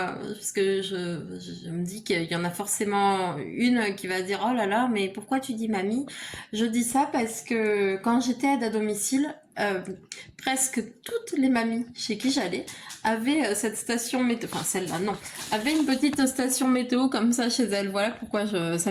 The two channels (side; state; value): both; identical; correlation 1.00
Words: que je me dis qu'il y en a forcément une qui va dire « Oh là là, mais pourquoi tu dis mamie ?» Je dis ça parce que quand j'étais aide à domicile, presque toutes les mamies chez qui j'allais avaient cette station météo, enfin celle-là non, avaient une petite station météo comme ça chez elles. Voilà pourquoi